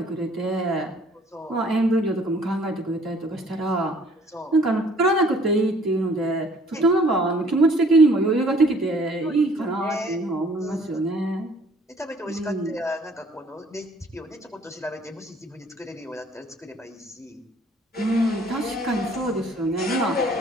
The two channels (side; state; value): both; normal; correlation 0.57